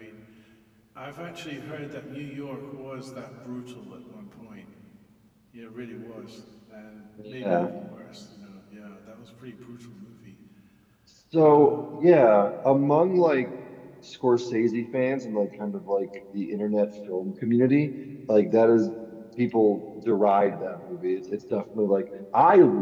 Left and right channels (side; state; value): both; identical; correlation 1.00